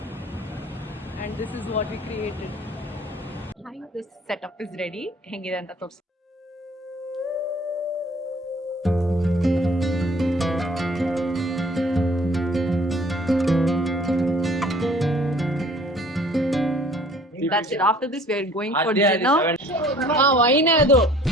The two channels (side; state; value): both; normal; correlation 0.53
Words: and this is what we created. Hi, this setup is ready. ಹೆಂಗಿದೆ ಅಂತ ತೋರಿಸಿ. That's it. After this, we are going for dinner. Wine ಅದು